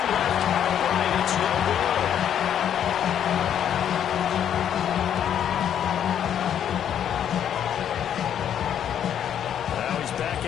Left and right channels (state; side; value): quieter; right; 9.5 dB